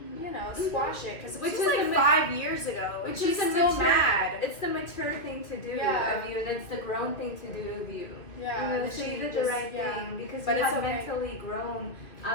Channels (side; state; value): right; late; 2.5 ms